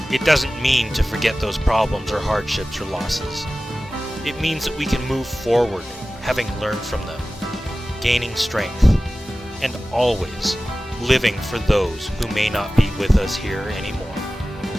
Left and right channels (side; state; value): both; normal; correlation 0.96